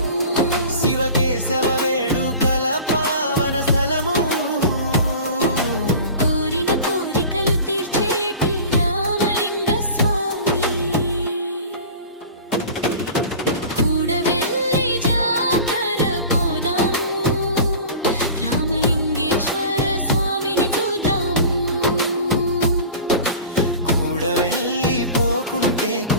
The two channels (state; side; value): inverted; both; correlation -0.38